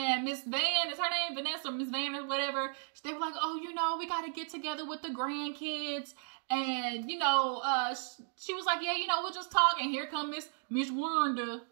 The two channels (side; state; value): left; silent; 55 dB below the other